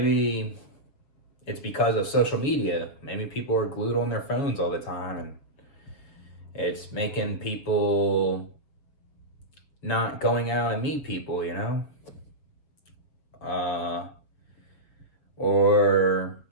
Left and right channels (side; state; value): right; late; 7.2 ms